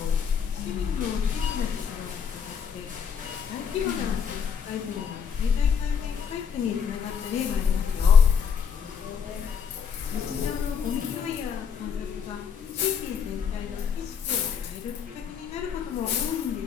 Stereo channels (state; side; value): quieter; right; 7.0 dB